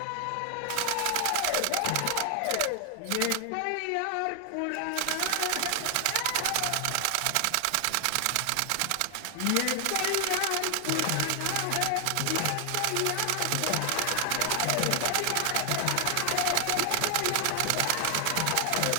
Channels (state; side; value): different; both; correlation 0.00